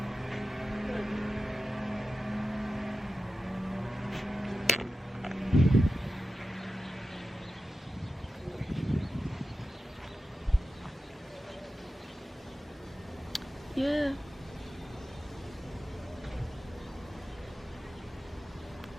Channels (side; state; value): both; normal; correlation 0.93